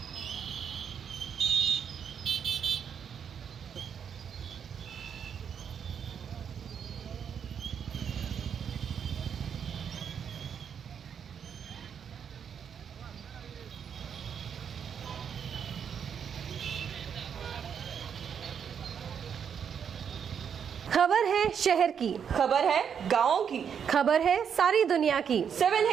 खबर है शहर की, खबर है गाँव की, खबर है सारी दुनिया की।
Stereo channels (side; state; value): left; quieter; 7.6 dB